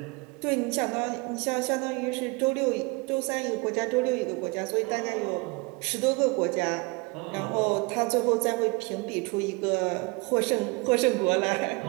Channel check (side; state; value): left; quieter; 27.5 dB